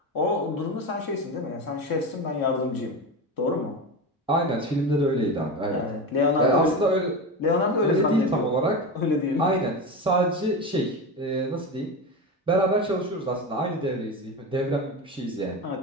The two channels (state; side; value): normal; both; correlation 0.22